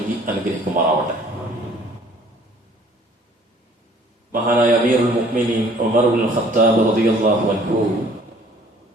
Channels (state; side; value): normal; both; correlation 0.55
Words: അനുഗ്രഹിക്കുമാറാവട്ടെ. മഹാനായ അമീറുൽ മുഅ്മിനീൻ ഉമർ ഇബ്നുൽ ഖത്താബ് റളിയല്ലാഹു അൻഹു